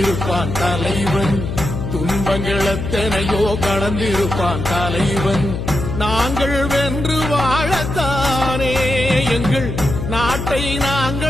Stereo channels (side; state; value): left; noise; hum, 4 dB below the sound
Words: தலைவன், துன்பங்கள் எத்தனையோ கடந்திருப்பான் தலைவன். நாங்கள் வென்று வாழத்தானே, எங்கள் நாட்டை